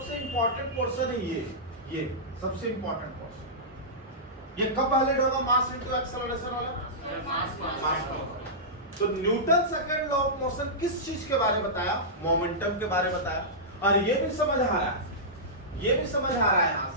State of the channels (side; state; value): both; normal; correlation -0.15